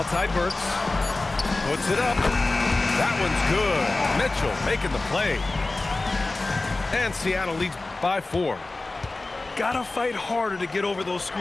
Burks. Puts it up. That one's good. Mitchell making the play. And Seattle leads by 4. Gotta fight harder to get over those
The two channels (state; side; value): quieter; right; 3.2 dB